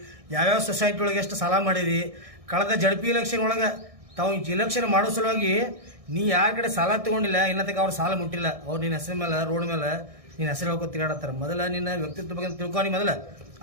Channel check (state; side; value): late; left; 1.6 ms